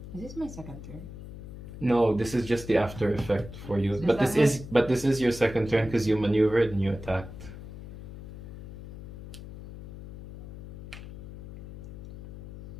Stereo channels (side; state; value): left; noise; hum, 13 dB below the sound